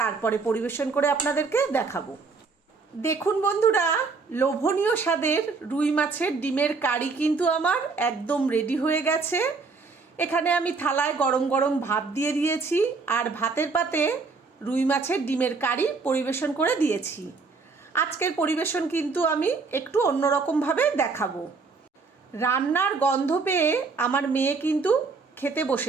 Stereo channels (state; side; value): quieter; left; 4.4 dB